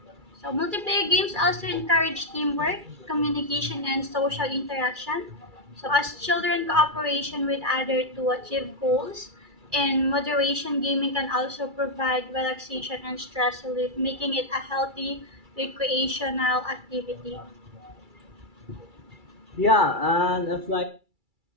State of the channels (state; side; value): late; left; 2.3 ms